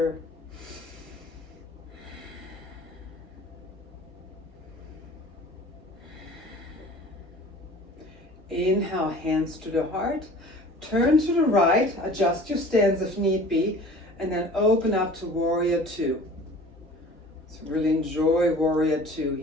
Inhale, hands to the heart. Turn to the right, adjust your stance if need be, and then open up to warrior 2. So really enjoy warrior 2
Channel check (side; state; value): both; normal; correlation 0.45